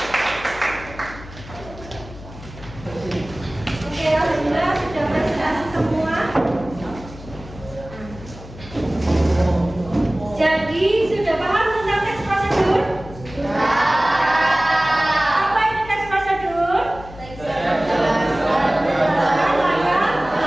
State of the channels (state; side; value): noise; left; hum, 16 dB below the sound